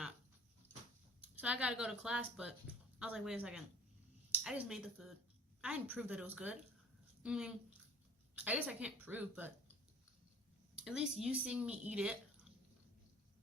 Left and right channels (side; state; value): both; normal; correlation 0.47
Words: So I gotta go to class, but I was like, wait a second. I just made the food. I didn't prove that it was good. I mean, I guess I can't prove, but at least you seeing me eat it